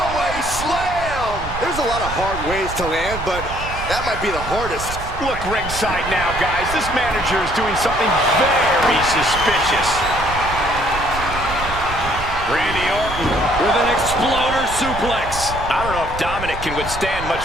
slam! There's a lot of hard ways to land, but that might be the hardest. Look ringside now, guys. This manager is doing something very suspicious. Randy Orton with an exploder suplex. I don't know if Dominic can withstand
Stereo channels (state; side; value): noise; right; rumble, 9 dB below the sound